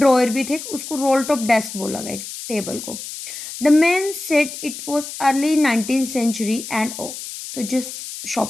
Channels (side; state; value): left; noise; hiss, 10 dB below the sound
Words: भी थे, उसको रोल टॉप डेस्क बोला गया टेबल को. The man said it was early 19th century and ओ. तो जिस